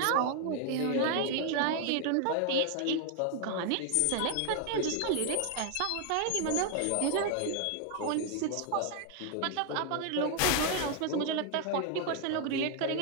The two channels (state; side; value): different; both; correlation 0.00